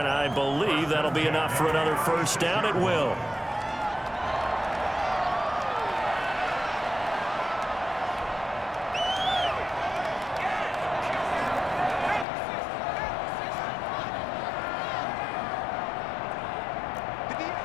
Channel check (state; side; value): drops out; right; at 12.2 s